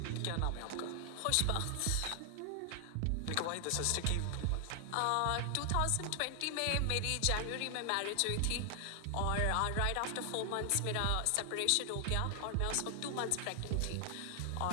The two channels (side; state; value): both; different; correlation 0.00